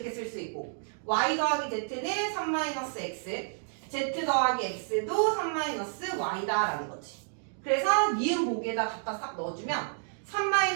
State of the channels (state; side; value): silent; left; digital silence